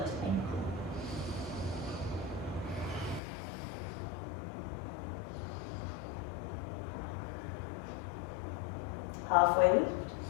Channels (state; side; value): drops out; right; at 3.2 s